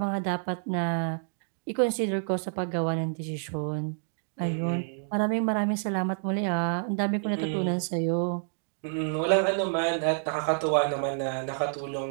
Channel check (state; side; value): silent; left; digital silence